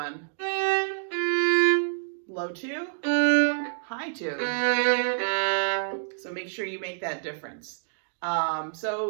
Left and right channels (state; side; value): silent; left; digital silence